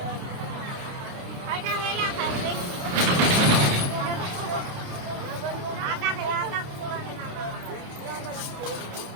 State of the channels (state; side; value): late; left; 29 ms